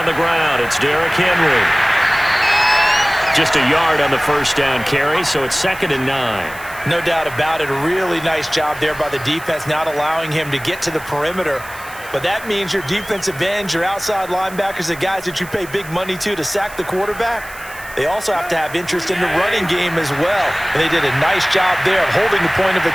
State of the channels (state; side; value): noise; right; hiss, 18 dB below the sound